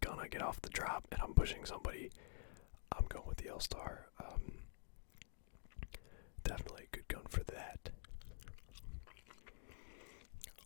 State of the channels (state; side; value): silent; right; digital silence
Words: gun I get off the drop and I'm pushing somebody. I'm going with the L-Star. Definitely a good gun for that.